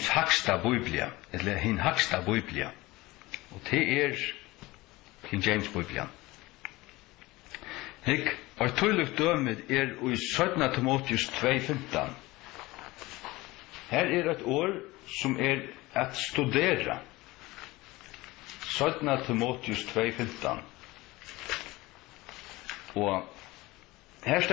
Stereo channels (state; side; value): quieter; right; 20.4 dB